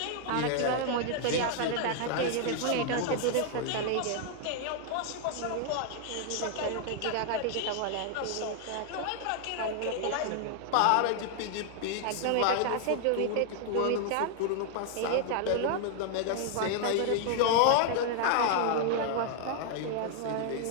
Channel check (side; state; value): both; different; correlation 0.00